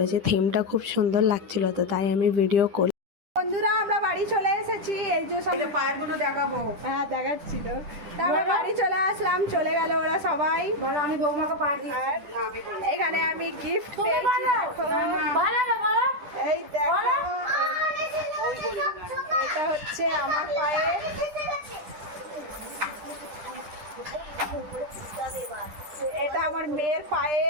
থিমটা খুব সুন্দর লাগছিল, তো তাই আমি ভিডিও করি। বন্ধুরা আমরা বাড়ি চলে এসেছি, এই যে সব পায়ের গুলো দেখাবো। হ্যাঁ দেখাচ্ছি। তো আমরা বাড়ি চলে আসলাম, চলে গেল ওরা সবাই। বলো আমি বৌমাকে পা দিই। আর এখানে আমি গিফট পেয়েছি, দেখো এই দেখো, এটা হচ্ছে আমার পায়ে, এটা আমার মেয়ের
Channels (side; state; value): left; late; 10 ms